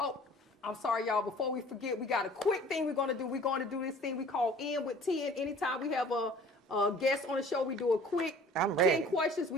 I'm sorry, y'all. Before we forget, we got a quick thing we're going to do. We're going to do this thing we call In with 10. Anytime we have a guest on the show, we do a quick I'm ready. 10 questions.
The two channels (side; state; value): both; normal; correlation 0.49